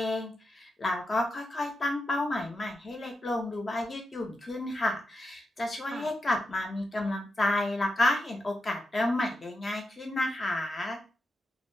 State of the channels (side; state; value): both; normal; correlation 0.87